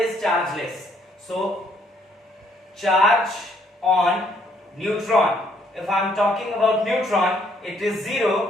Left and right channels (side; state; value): both; normal; correlation 0.67